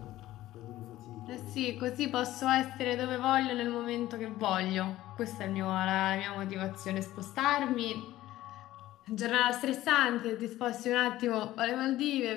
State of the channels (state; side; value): quieter; right; 15.2 dB